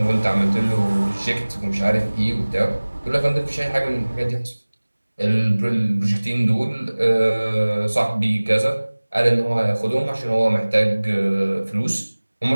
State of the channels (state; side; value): inverted; both; correlation -1.00